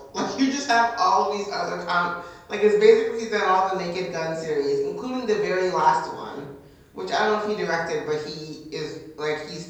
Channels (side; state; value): both; identical; correlation 1.00